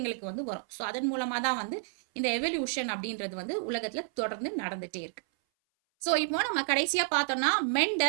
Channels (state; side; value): silent; left; 57 dB below the other